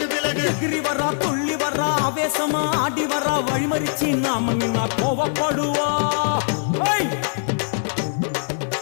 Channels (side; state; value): right; silent; 64 dB below the other